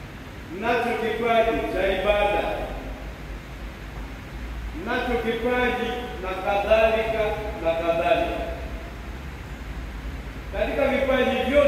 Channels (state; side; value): identical; both; correlation 1.00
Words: mnacho kipaji cha ibada, mnacho kipaji na kadhalika na kadhalika. Katika vipaji